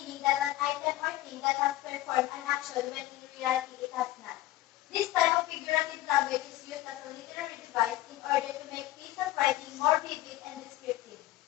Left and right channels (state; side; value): quieter; right; 15.8 dB